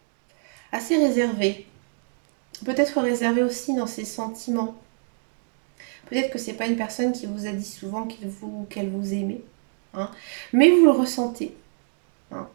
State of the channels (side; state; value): left; silent; 56 dB below the other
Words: assez réservée, peut-être réservée aussi dans ses sentiments. Peut-être que c'est pas une personne qui vous a dit souvent qu'elle vous aimait, hein, mais vous le ressentez. hein.